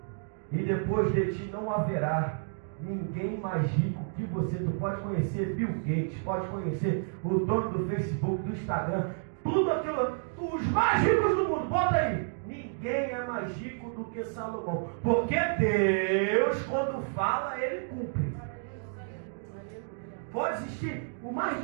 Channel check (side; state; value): left; silent; digital silence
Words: e depois de ti não haverá ninguém mais rico que você. Tu pode conhecer Bill Gates, pode conhecer o dono do Facebook, do Instagram, tudo aquilo, os mais ricos do mundo, bota aí. Ninguém é mais rico do que Salomão, porque Deus, quando fala, ele cumpre. Pode existir o mais